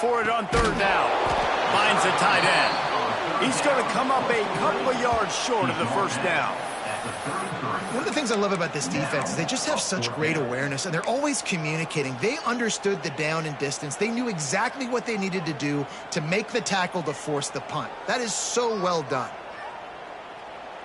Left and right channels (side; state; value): both; identical; correlation 1.00